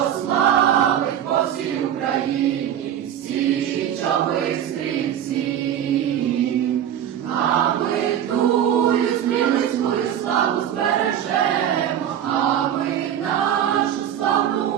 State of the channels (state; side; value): quieter; left; 10.2 dB